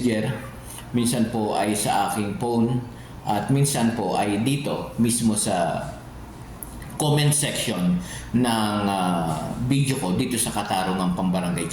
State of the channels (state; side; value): identical; both; correlation 1.00